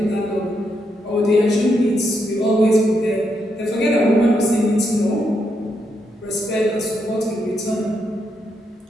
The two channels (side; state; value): both; normal; correlation 0.80